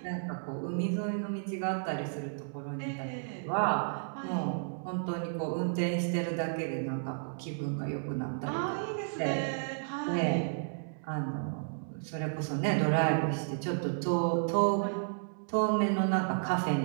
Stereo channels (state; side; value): silent; left; digital silence